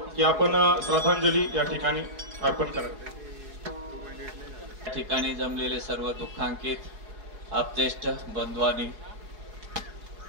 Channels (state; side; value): late; left; 4.9 ms